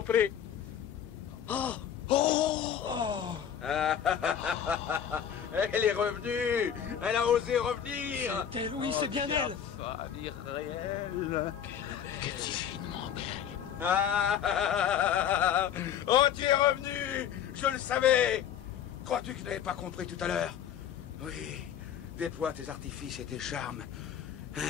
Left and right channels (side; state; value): right; quieter; 9.0 dB